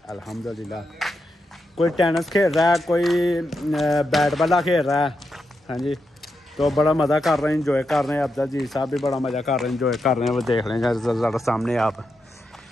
अल्हम्दुलिल्लाह कोई टेनिस खेल रहा है, कोई बैट बॉल खेल रहा है। हाँ जी, तो बड़ा मज़ा कर रहे हैं, इंजॉय कर रहे हैं। अब्दुल जी साहब भी बड़ा मज़ा कर रहे हैं, इंजॉय कर रहे हैं। वो देख लें ज़रा सामने आप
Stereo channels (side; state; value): both; normal; correlation 0.85